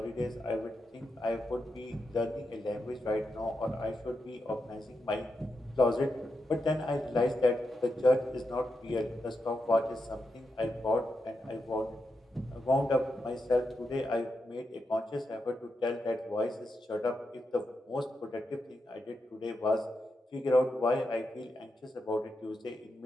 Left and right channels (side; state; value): both; normal; correlation 0.86